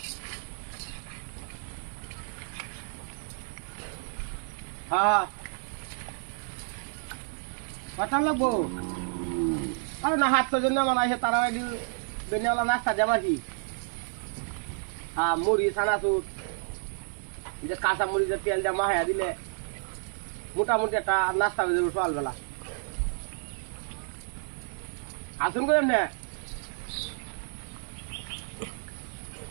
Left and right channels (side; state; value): left; silent; 58 dB below the other